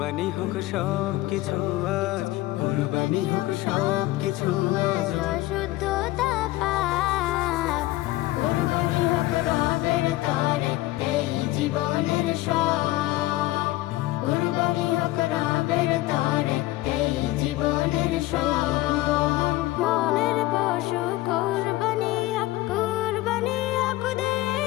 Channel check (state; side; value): quieter; right; 17.6 dB